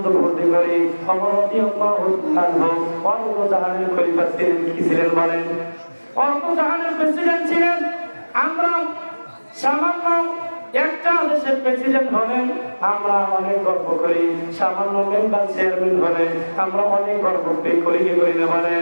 ভর্তি করি। জাহানের খলিফা ছিলেন, কি ছিলেন বলেন? জাহানের প্রেসিডেন্ট ছিলেন। আমরা সামান্য একটা দেশের প্রেসিডেন্ট হলেন আমরা অনেক গর্ব করি, সামান্য মেম্বার চেয়ারম্যান হলে আমরা অনেক গর্ব করি, কি করি না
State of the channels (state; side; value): inverted; both; correlation -1.00